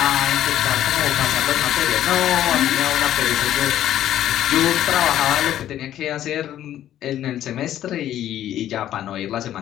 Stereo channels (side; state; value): right; quieter; 12.0 dB